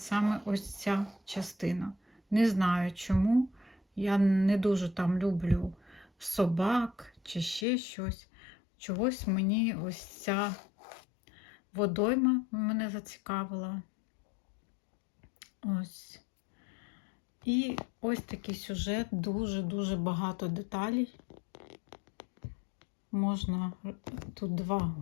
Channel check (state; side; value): drops out; right; at 7.7 s